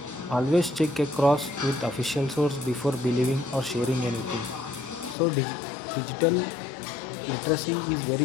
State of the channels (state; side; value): drops out; right; at 5.2 s